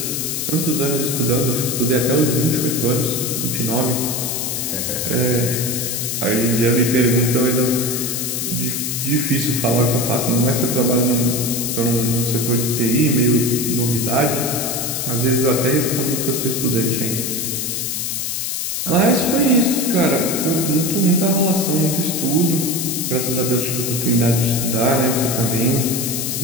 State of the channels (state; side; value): noise; left; hiss, 2 dB below the sound